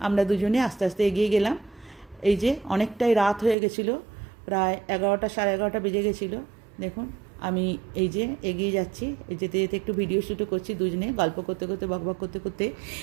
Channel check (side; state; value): left; drops out; at 3.6 s